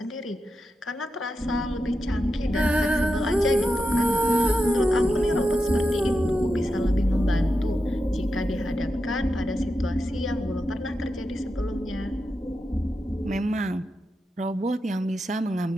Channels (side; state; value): both; normal; correlation 0.88